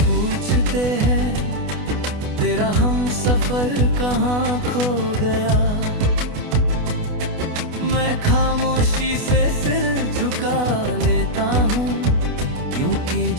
हैं, तेरा हम सफर कहाँ खो गया। मैं खामोशी से सिर झुका लेता हूँ, क्योंकि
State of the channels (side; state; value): left; late; 28 ms